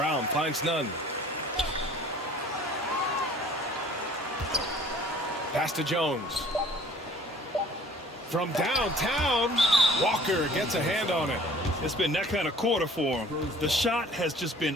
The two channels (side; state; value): both; normal; correlation 0.51